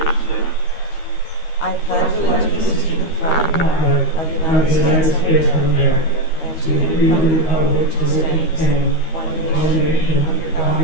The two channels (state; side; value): late; right; 13 ms